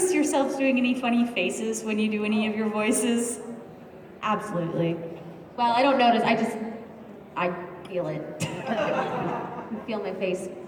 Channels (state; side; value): identical; both; correlation 1.00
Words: yourselves doing any funny faces when you do any of your voices? Absolutely. Well, I don't notice, I feel it. I feel my face